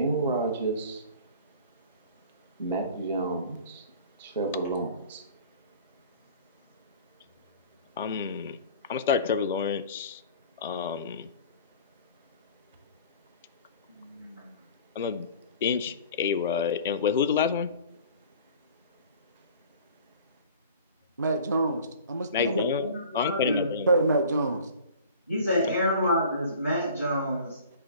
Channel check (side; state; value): both; inverted; correlation -0.44